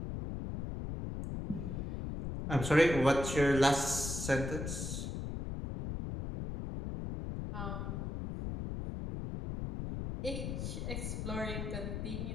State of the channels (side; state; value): left; noise; rumble, 4 dB below the sound